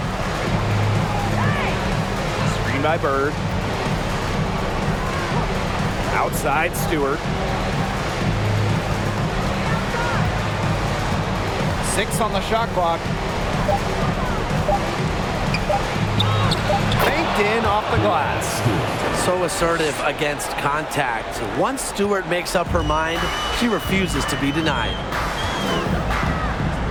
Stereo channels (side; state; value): both; identical; correlation 1.00